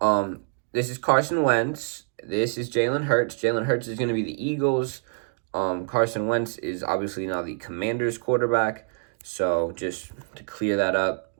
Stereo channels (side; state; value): left; silent; 61 dB below the other